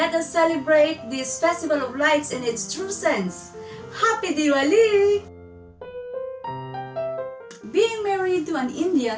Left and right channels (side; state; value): both; identical; correlation 1.00